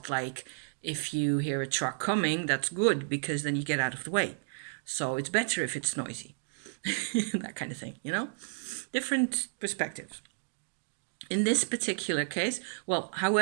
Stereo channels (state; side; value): silent; left; digital silence